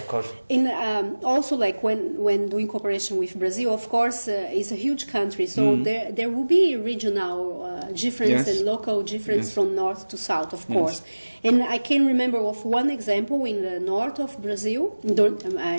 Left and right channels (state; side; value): inverted; both; correlation -1.00